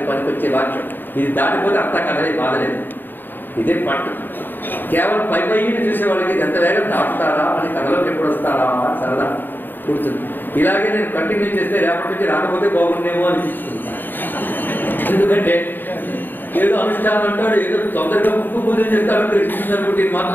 పనికొచ్చే వాక్యం. ఇది దాటిపోతే అంతా కదలే బాధలేదు. ఇదే పట్టు. కేవలం పై పైన చూసే వాళ్ళకి ఎంత వేగం దాటుతారా అని, కథలోకి ఎప్పుడు వస్తారా అని సరదా కూర్చుంది. ఇలాగే నేను కంటిన్యూ చేస్తే రేపటి నుంచి రాకపోతే బాగుండేమో అనిపించుకుంటాను. ఎందుకంటే ఏదో అనుష్ఠానం అంటాడు, ఏదో తొందరగా ముక్కు పూజలు చేస్తాడు, కృష్ణుడు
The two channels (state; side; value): late; right; 0.092 ms